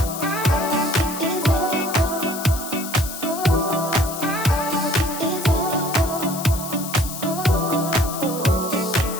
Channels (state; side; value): noise; left; hiss, 9 dB below the sound